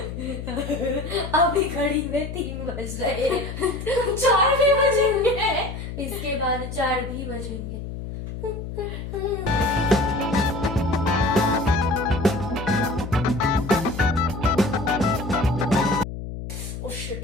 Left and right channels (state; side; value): noise; left; hum, 8 dB below the sound